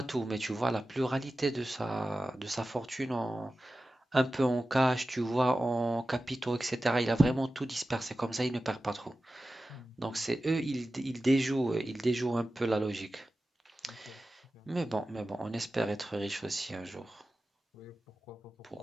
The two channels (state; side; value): normal; both; correlation 0.95